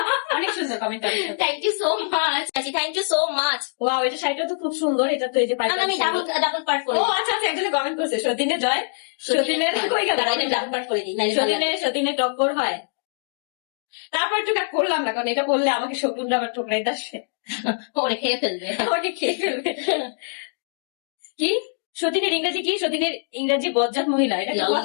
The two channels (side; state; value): right; silent; digital silence